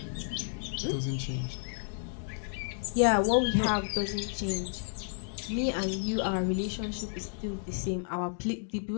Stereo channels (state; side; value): silent; right; digital silence